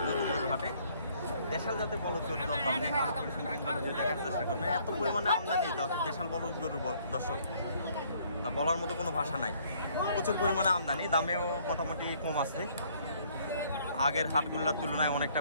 হাটে। দেশাল জাতের বলদ গরুর দরদাম দেখার চেষ্টা করবেন। এত পরিমাণে আমদানি দেশাল বলদ গরুর দর্শক তা বলার মতো কোনো ভাষা নাই। প্রচুর পরিমাণে আমদানি, দামেও মোটামুটি কম আছে। আগের হাটগুলোর তুলনায় অনেকটা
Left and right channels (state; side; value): inverted; both; correlation -0.62